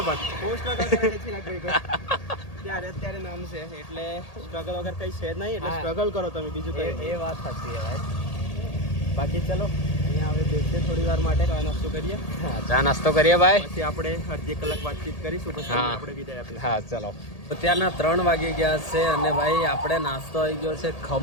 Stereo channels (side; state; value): right; late; 1.8 ms